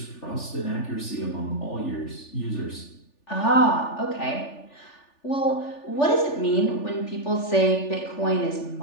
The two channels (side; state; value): right; late; 3.4 ms